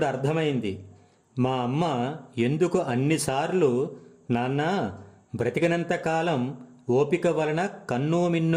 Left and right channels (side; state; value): both; identical; correlation 1.00